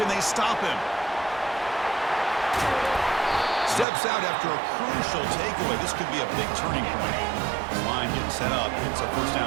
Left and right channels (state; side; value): drops out; left; at 3.9 s